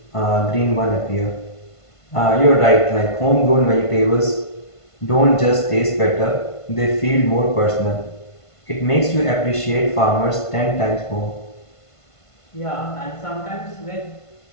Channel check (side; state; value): right; late; 1.5 ms